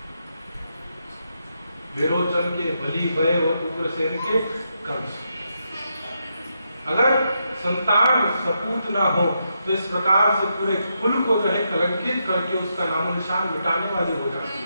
विरोचन के बलि भय और उग्रसेन के कंस। अगर संतान सपूत ना हो तो इस प्रकार से पूरे कुल को जो है कलंकित करके उसका नामो निशान मिटाने वाली हो जाती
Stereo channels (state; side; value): inverted; both; correlation -0.82